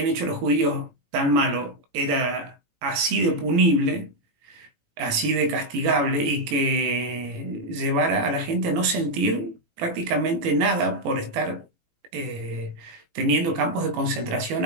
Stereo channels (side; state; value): left; late; 17 ms